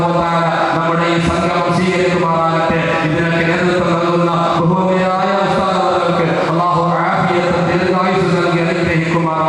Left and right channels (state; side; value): identical; both; correlation 1.00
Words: വ തആല നമ്മുടെ ഈ സംഗമം സ്വീകരിക്കുമാറാകട്ടെ. ഇതിനൊക്കെ നേതൃത്വം നൽകുന്ന ബഹുമാന്യരായ ഉസ്താദുകൾക്ക് അല്ലാഹു ആഫിയത്തും ദീർഘായുസ്സും നൽകി